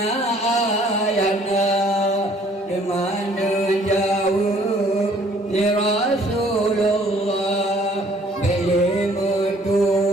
ayahna di mana jauh ni Rasul Rasulullah beli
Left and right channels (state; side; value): normal; both; correlation 0.59